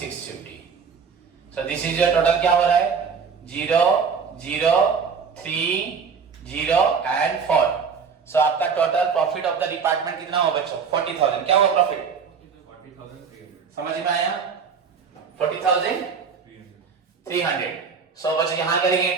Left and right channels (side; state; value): left; quieter; 6.0 dB